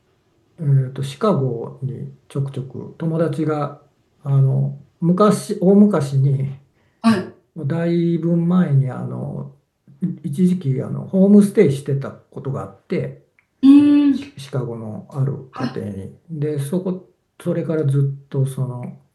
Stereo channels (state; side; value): identical; both; correlation 1.00